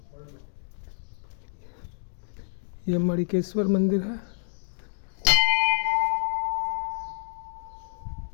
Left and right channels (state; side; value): silent; right; digital silence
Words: ये मणिकेश्वर मंदिर है।